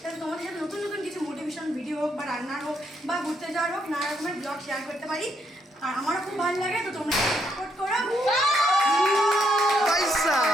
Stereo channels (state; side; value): normal; both; correlation 0.75